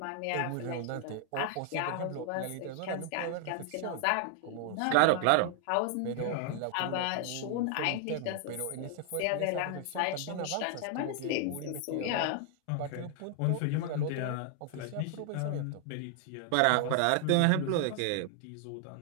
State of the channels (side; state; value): both; different; correlation 0.00